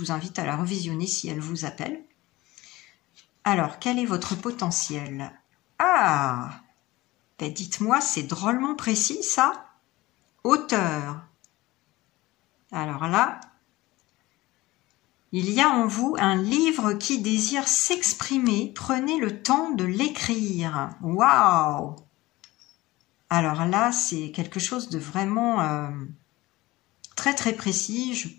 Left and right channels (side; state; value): right; quieter; 19.3 dB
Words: invite à la revisionner si elle vous appelle. Alors, quel est votre potentiel? Ah, ben dites-moi, c'est drôlement précis ça. Auteur. Alors là, il y a en vous un livre qui désire s'exprimer. Prenez le temps de l'écrire. Waouh! Alors là, c'est quelque chose de vraiment très précis. Je